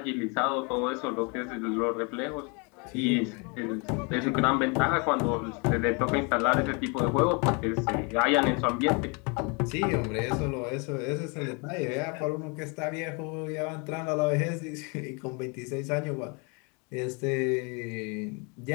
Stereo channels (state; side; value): quieter; right; 32.5 dB